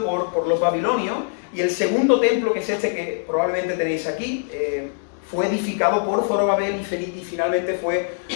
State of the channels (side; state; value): right; silent; 64 dB below the other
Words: por los babilonios, y el segundo templo, que es este que probablemente tenéis aquí, fue edificado por Zorobabel y finalmente fue